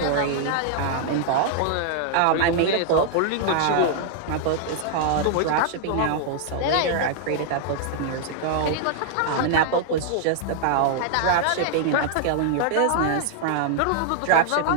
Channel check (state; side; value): different; both; correlation -0.01